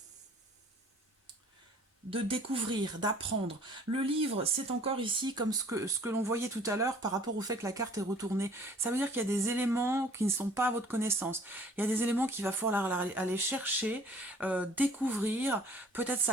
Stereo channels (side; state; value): both; normal; correlation 0.53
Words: découvrir, d'apprendre. Le livre, c'est encore ici comme ce que l'on voyait tout à l'heure par rapport au fait que la carte est retournée. Ça veut dire qu'il y a des éléments qui ne sont pas à votre connaissance. Il y a des éléments qu'il va falloir aller chercher, découvrir. Peut-être